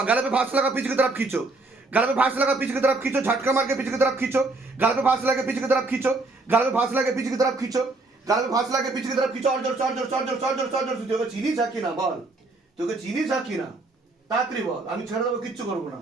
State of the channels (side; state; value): left; quieter; 3.2 dB